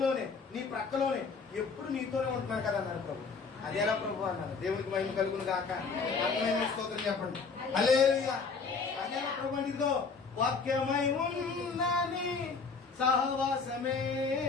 నీ ప్రక్కలోనే, ఎప్పుడు నీతోనే ఉంటున్నాను కదా అన్నారు ప్రభు. అదేలా ప్రభు అన్నారు. దేవునికి మహిమ కలుగును గాక. స్తోత్రం చెప్పండి, హల్లెలూయా. అదేలా ప్రభు అంటే ఇదిగో వాక్యమై ఉన్నని సహవాసమే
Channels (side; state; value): right; quieter; 4.9 dB